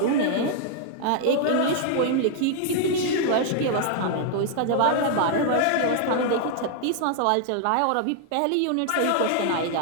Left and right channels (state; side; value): different; both; correlation 0.00